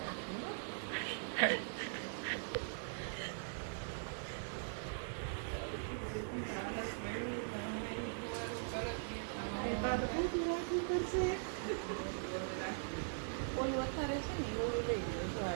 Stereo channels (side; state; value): left; silent; digital silence